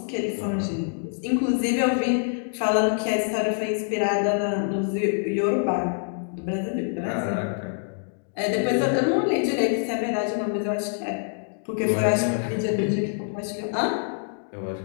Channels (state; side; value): silent; right; digital silence